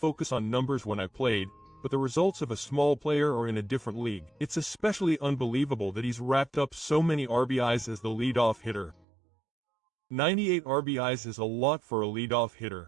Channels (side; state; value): left; drops out; at 9.1 s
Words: on numbers when I played, but the results of a small player are in a different league. It's especially unbelievable that he's racked up so many RBIs as the leadoff hitter. 98 RBIs is a lot for a leadoff hitter.